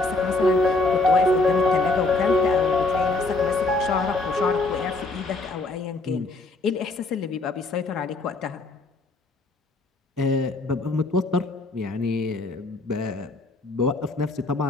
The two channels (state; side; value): quieter; right; 3.2 dB